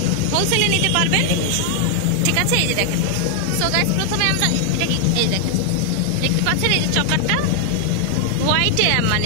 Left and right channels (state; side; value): different; both; correlation 0.00